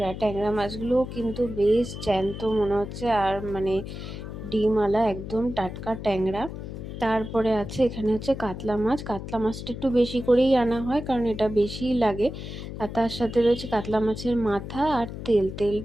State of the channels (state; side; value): noise; left; hum, 9 dB below the sound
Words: ট্যাংরা মাছগুলোও কিন্তু বেশ জ্যান্ত মনে হচ্ছে, আর মানে ডিমওয়ালা একদম টাটকা ট্যাংরা। তারপরে আছে এখানে হচ্ছে কাতলা মাছ। কাতলা মাছটা একটু বেশি করেই আনা হয়, কারণ এটা বেশিই লাগে। আর তার সাথে রয়েছে কাতলা মাছের মাথা আর তেল।